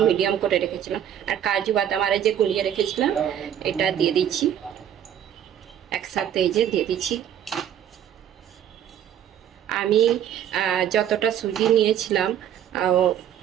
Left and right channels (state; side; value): quieter; left; 10.0 dB